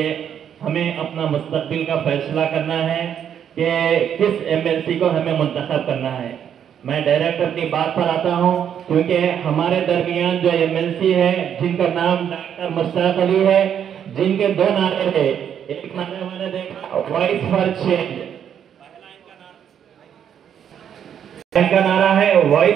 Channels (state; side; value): quieter; left; 8.9 dB